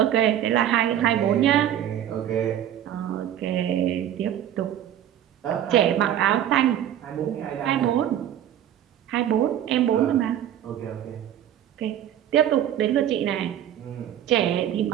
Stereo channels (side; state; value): left; quieter; 10.8 dB